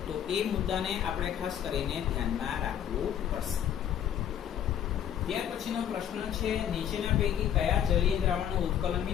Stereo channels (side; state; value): right; quieter; 9.8 dB